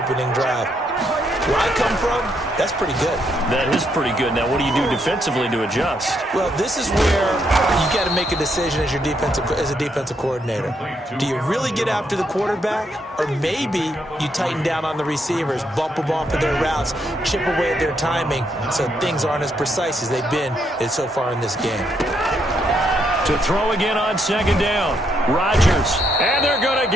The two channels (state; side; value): normal; both; correlation 0.76